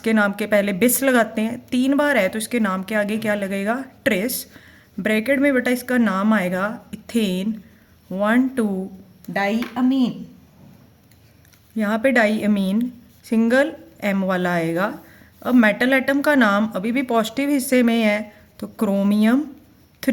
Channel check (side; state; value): both; identical; correlation 1.00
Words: नाम के पहले बिस लगाते हैं, 3 बार है तो इसके नाम के आगे क्या लगेगा, ट्रेस। ब्रैकेट में बेटा इसका नाम आएगा इथेन 1,2 डाई अमीन। यहाँ पे डाई अमीन सिंगल M वाला आएगा। अब मेटल एटम का नाम अभी भी पॉजिटिव हिस्से में है तो क्रोमियम